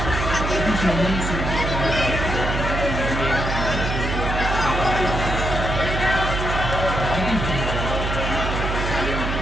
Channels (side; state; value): right; noise; hum, 2 dB below the sound